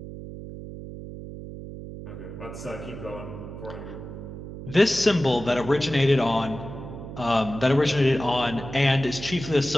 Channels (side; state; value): right; noise; hum, 11 dB below the sound